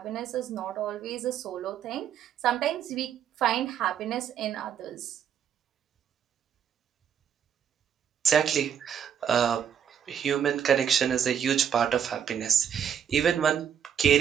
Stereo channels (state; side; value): quieter; left; 8.5 dB